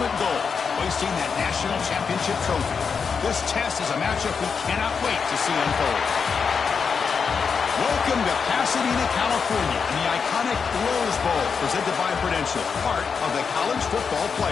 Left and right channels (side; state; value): right; quieter; 5.8 dB